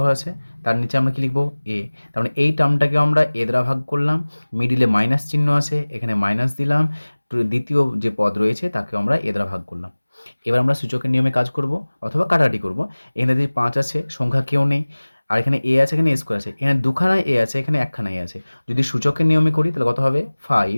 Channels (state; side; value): inverted; both; correlation -1.00